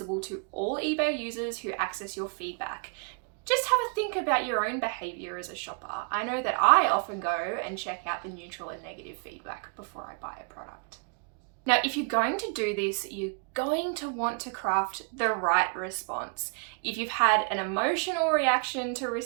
to all eBay users who access your feedback. Just have a think about your own behavior as a shopper. I know that I often go and check out the neutral and negative feedback before I buy a product. Now, if you're going to do this, you're going to want to craft the right response. If you've had an emotional reaction to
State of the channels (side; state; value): left; quieter; 37.4 dB